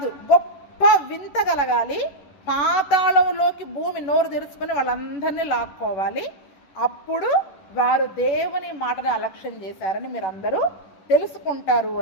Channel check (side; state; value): right; late; 11 ms